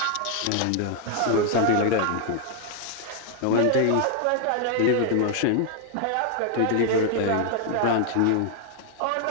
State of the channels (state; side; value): different; both; correlation 0.00